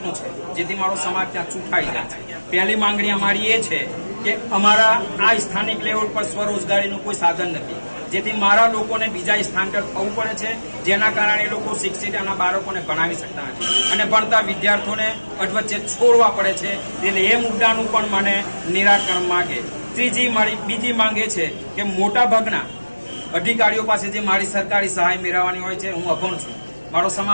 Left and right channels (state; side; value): inverted; both; correlation -1.00